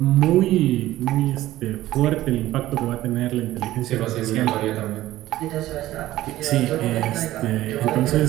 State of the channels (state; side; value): quieter; left; 15.3 dB